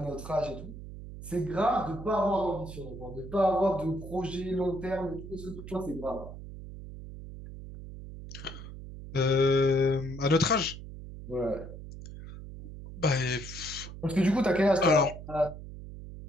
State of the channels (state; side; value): noise; right; hum, 12 dB below the sound